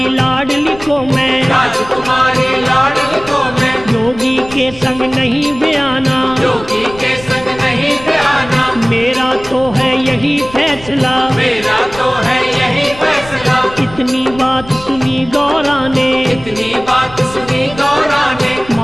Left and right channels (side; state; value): left; noise; rumble, 18 dB below the sound